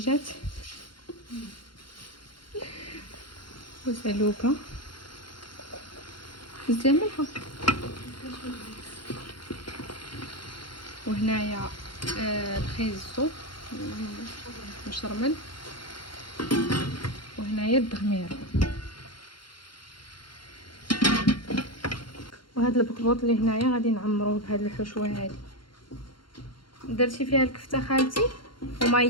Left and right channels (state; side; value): late; right; 0.72 ms